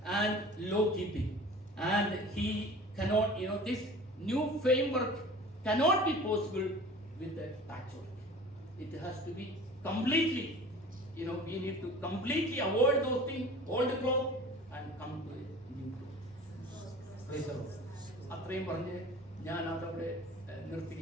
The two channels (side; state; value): both; normal; correlation 0.42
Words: and law keeping, and he cannot, this new framework cannot be possible with a patchwork. It has to be completely, we need to completely avoid those things, old cloth, and come to a new cloth. Praise the Lord. അത്രയും പറഞ്ഞ് ഞാൻ അതവിടെ